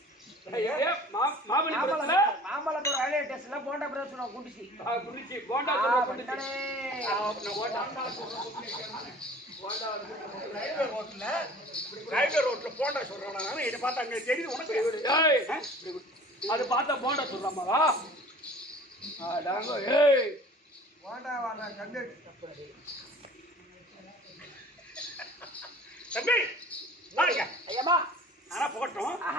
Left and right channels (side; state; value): both; normal; correlation 0.46